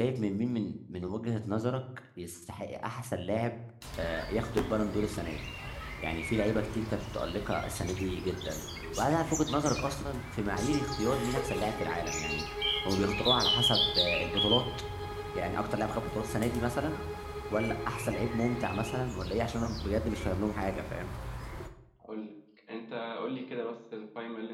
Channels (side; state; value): both; identical; correlation 1.00